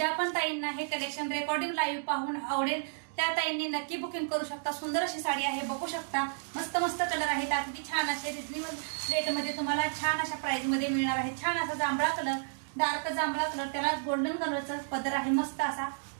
पण ताईंना हे कलेक्शन रेकॉर्डिंग लाईव्ह पाहून आवडेल त्या ताईंनी नक्की बुकिंग करू शकता। सुंदर अशी साडी आहे, बघू शकता मस्त मस्त कलर आहेत। अगदी छान असे रिजनेबल रेट मध्ये तुम्हाला छान अशा प्राइस मध्ये मिळणार आहे। छान असा जांभळा कलर, डार्क जांभळा कलर, त्याला गोल्डन कलरचा पदर आहे। मस्त असा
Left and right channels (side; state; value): left; silent; digital silence